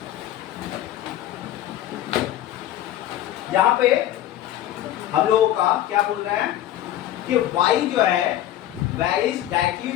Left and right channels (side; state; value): right; quieter; 12.8 dB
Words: यहाँ पे हम लोगों का क्या बोल रहे हैं कि y जो है varies directly